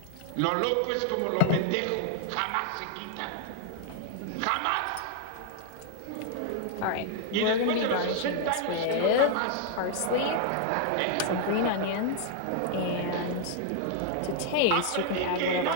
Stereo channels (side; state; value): both; different; correlation 0.00